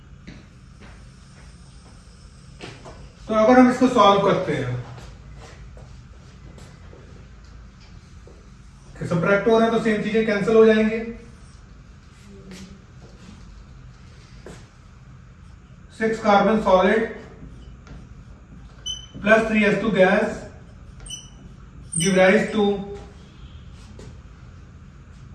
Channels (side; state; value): both; identical; correlation 1.00